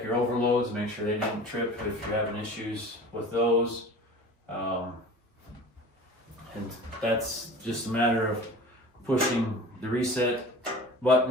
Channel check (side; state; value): both; normal; correlation 0.39